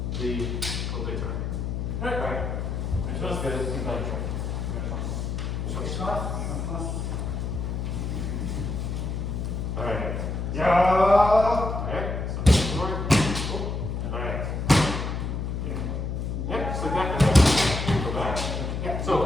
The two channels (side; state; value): left; noise; hum, 2 dB below the sound